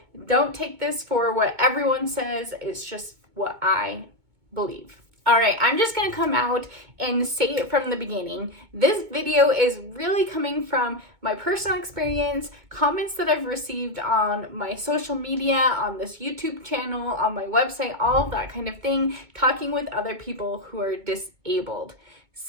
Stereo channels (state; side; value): late; left; 2.2 ms